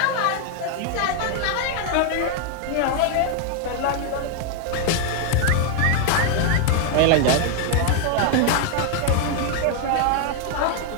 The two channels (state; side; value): different; both; correlation 0.00